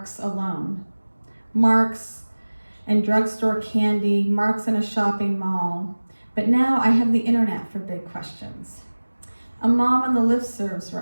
alone. Marks and drugstore candy, marks in a shopping mall. But now I have the internet for big questions. A mom on the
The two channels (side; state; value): both; inverted; correlation -1.00